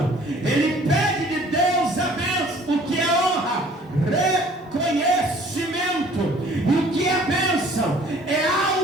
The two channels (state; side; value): normal; both; correlation 0.54